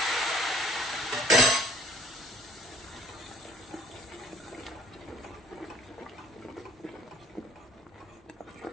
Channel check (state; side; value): normal; both; correlation 0.55